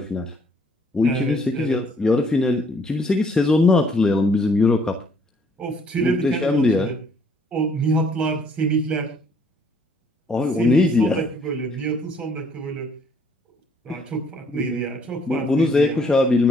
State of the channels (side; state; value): both; normal; correlation 0.64